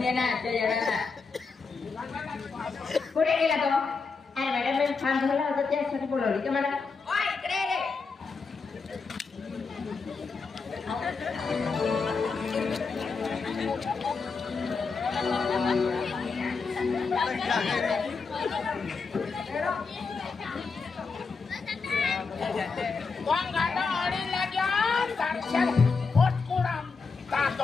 ये ना त्या येणार कुठे गेला तो अरे मॅडम मी फॉर्म भरला होता त्यासाठी बोलवली का मला ओय इकडे रे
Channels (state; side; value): quieter; right; 4.7 dB